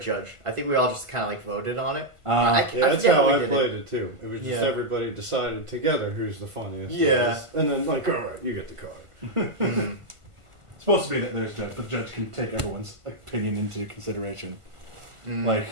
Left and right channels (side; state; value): left; late; 1.5 ms